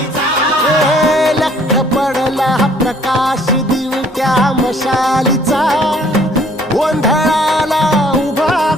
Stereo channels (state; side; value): normal; both; correlation 0.60